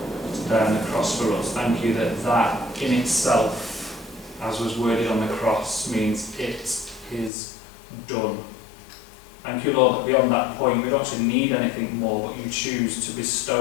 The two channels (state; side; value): drops out; right; at 7.3 s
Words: to die on the cross for us. Thank you that that in itself, as was worded on the cross, means it is done. Thank you, Lord, that beyond that point we don't actually need anything more, but you choose to